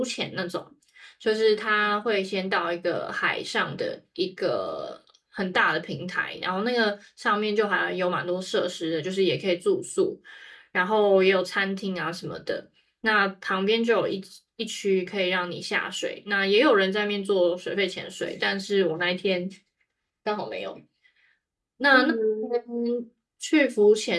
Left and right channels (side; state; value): both; identical; correlation 1.00